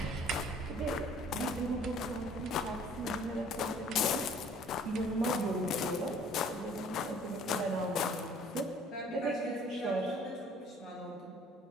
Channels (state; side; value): normal; both; correlation 0.55